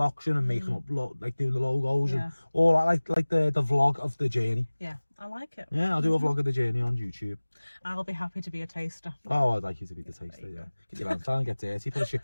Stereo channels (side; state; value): both; inverted; correlation -1.00